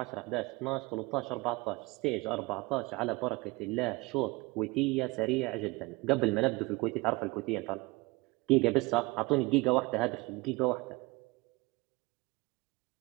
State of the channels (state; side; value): quieter; left; 24.1 dB